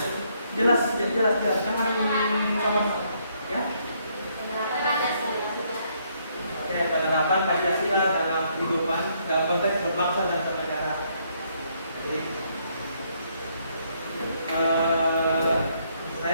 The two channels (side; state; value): both; inverted; correlation -0.71